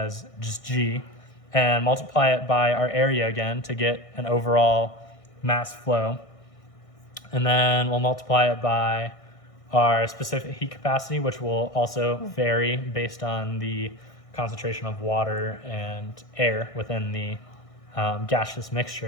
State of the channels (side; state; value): right; late; 1.6 ms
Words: just G and multiply it by our area again to get an overall mass flow. And then we'll multiply it by our specific heat capacity, which will also vary based on the concentration of water and air within the gaseous